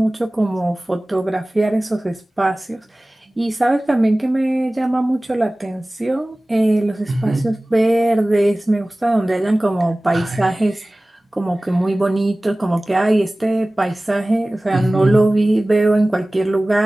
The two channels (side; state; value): both; normal; correlation 0.98